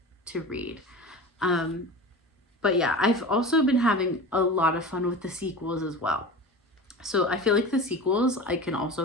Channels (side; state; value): both; normal; correlation 0.32